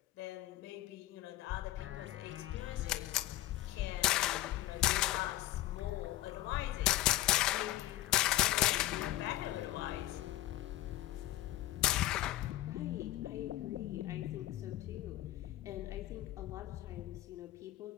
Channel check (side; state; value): right; quieter; 15.1 dB